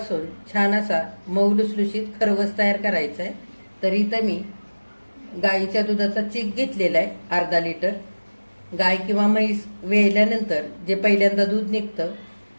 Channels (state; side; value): inverted; both; correlation -1.00